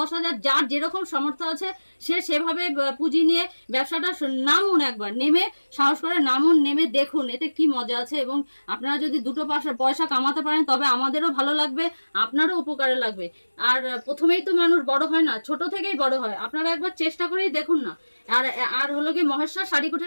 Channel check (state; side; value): inverted; both; correlation -1.00